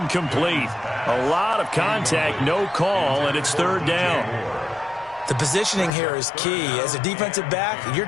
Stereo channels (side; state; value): right; drops out; at 5.9 s